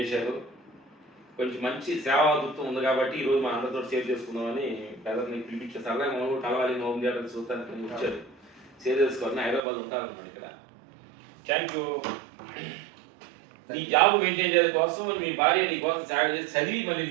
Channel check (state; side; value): drops out; left; at 9.6 s